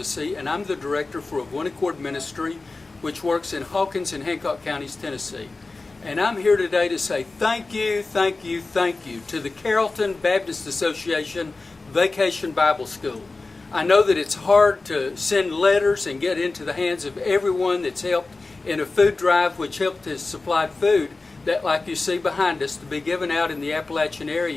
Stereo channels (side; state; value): right; quieter; 3.6 dB